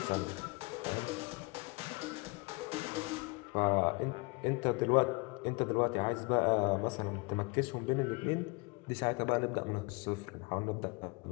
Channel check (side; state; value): right; quieter; 28.9 dB